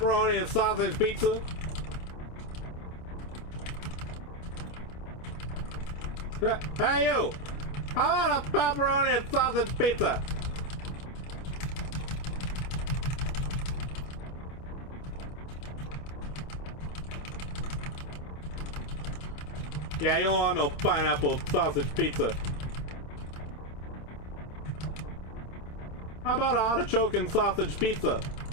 and sausage pizza? Hey, you! How about a pepperoni and sausage pizza? Yeah, you don't want no pineapple sausage pizza. How about an artichoke and sausage pizza?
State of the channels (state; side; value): late; right; 27 ms